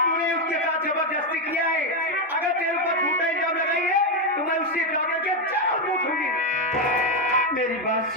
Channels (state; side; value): normal; both; correlation 0.06